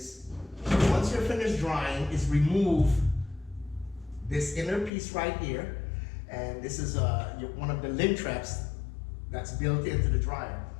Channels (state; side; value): drops out; right; at 4.9 s